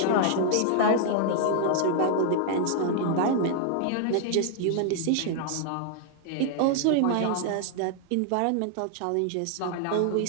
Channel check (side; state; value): both; different; correlation -0.01